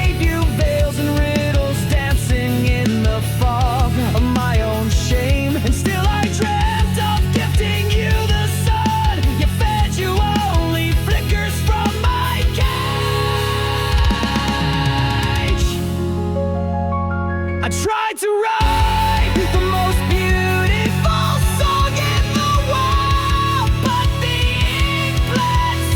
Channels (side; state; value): both; identical; correlation 1.00